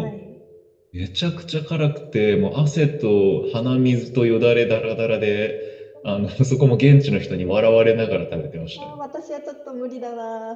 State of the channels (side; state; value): both; identical; correlation 1.00